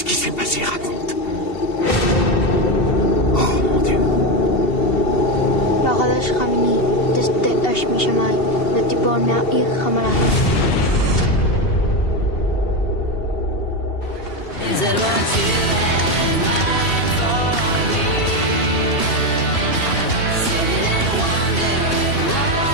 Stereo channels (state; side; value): late; right; 2.7 ms